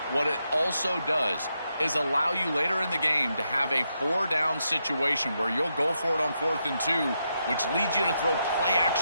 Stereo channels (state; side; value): inverted; both; correlation -0.82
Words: what it also does is allow you later in the game to have a 4-down situation where you'll go for it on 4th and 2, which leads you to throw